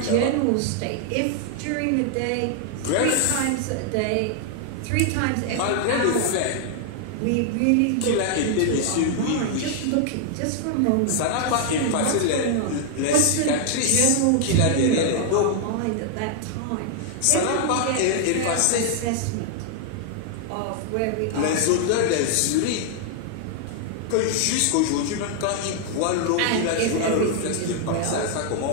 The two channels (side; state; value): both; different; correlation 0.00